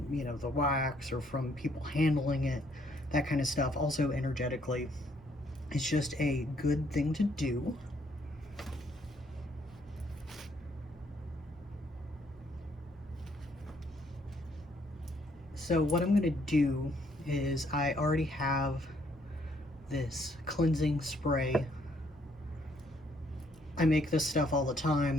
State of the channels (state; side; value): normal; both; correlation 0.68